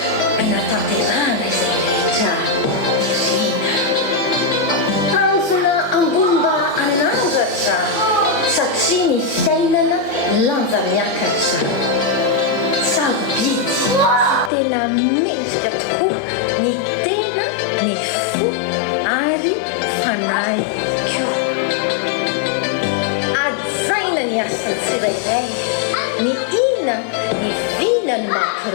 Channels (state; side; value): drops out; right; at 14.5 s